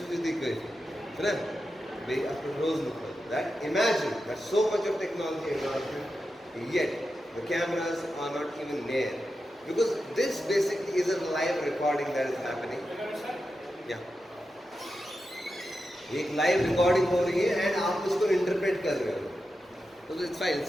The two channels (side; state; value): both; normal; correlation 0.90